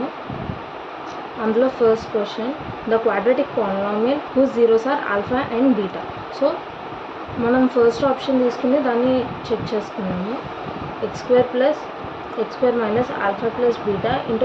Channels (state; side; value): identical; both; correlation 1.00